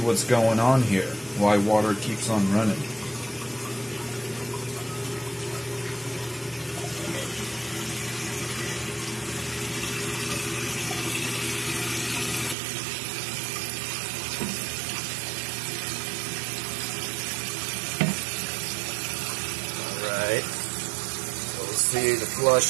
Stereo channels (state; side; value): drops out; left; at 12.6 s